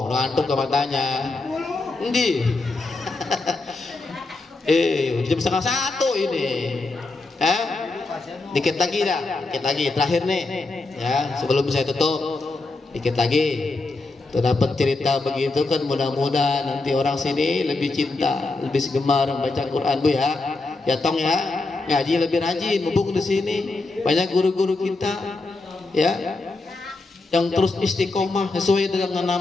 ngantuk ke matanya. Endi? Jam 12:30 ini. Dikit lagi dah, dikit lagi terakhir nih, ya, sebelum saya tutup. Dikit lagi tuh dapat cerita begitu kan, mudah-mudahan nanti orang sini lebih cinta, lebih gemar membaca Quran Bu, ya. Ya tong, ya, ngaji lebih rajin, mumpung di sini banyak guru-guru kita, ya, yang terus istiqomah sesuai dengan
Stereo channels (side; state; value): right; quieter; 3.4 dB